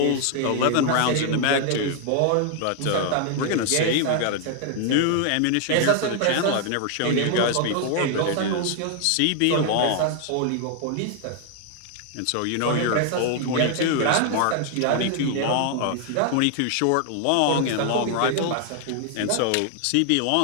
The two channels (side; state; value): both; different; correlation 0.00